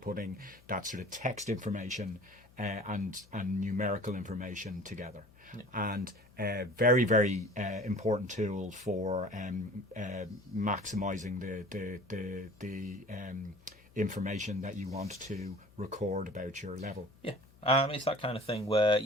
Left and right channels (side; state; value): left; noise; hum, 27 dB below the sound